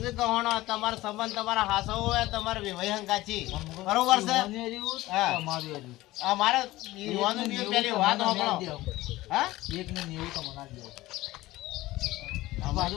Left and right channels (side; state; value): right; quieter; 17.7 dB